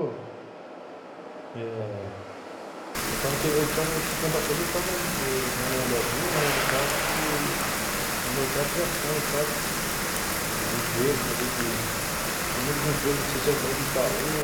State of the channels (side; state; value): both; identical; correlation 1.00